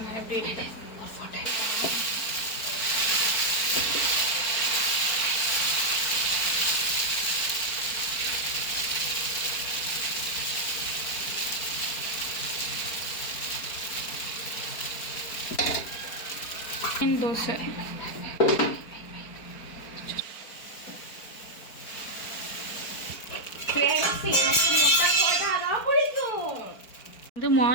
எப்படி இருக்கு. தோசை வந்து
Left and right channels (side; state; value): right; late; 4.4 ms